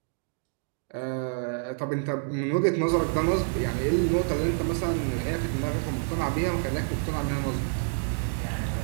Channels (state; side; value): silent; left; 59 dB below the other